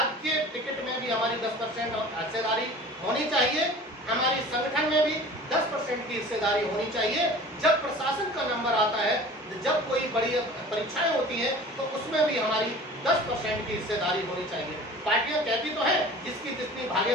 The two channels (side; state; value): both; normal; correlation 0.42